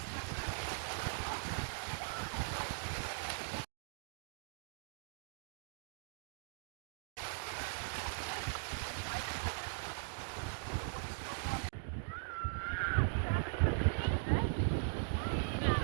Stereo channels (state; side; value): silent; left; digital silence